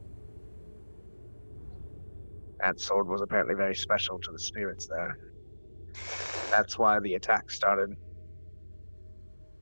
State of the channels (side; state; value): both; inverted; correlation -1.00